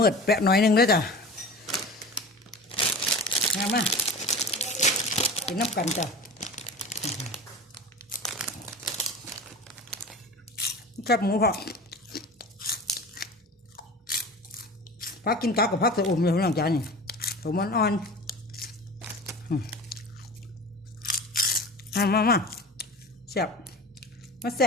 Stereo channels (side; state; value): both; normal; correlation 0.35